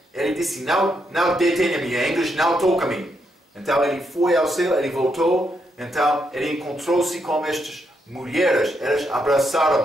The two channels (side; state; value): both; normal; correlation 0.79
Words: ele disse, não detenha-me, em inglês, não toca-me. Então, ele foi ao céu, ele voltou, então, ele encontrou-se com estas mulheres, elas